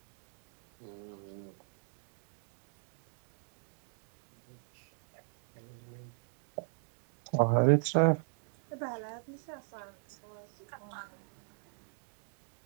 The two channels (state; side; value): silent; left; digital silence